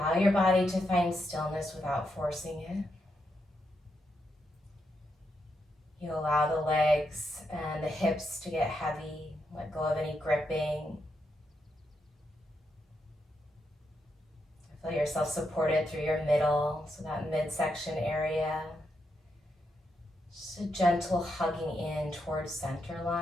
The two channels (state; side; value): normal; both; correlation 0.82